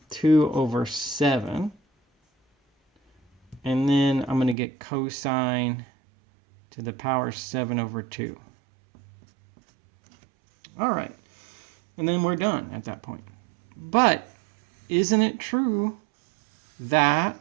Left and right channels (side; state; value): left; drops out; at 4.5 s